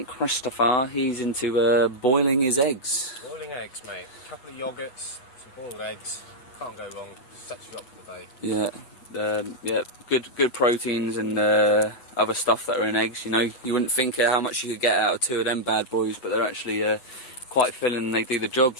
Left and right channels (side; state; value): right; late; 7.7 ms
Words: Christopher, he's into boiling his eggs. Boiling eggs, mate. A couple of yogurts, some boiled eggs. Can't go wrong. Sets you up for the day. Yeah, good proteins and other stuff that are in eggs. You know, you wouldn't think how much you could get out of two of them bad boys, but they're actually quite filling and they do the job.